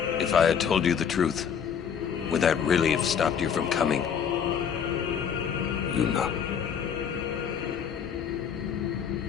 If I had told you the truth, would that really have stopped you from coming? Yuna.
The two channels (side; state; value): right; quieter; 7.5 dB